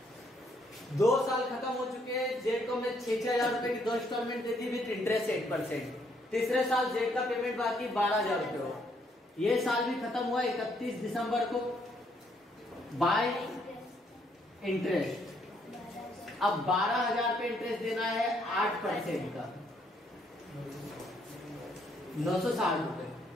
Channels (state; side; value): normal; both; correlation 0.70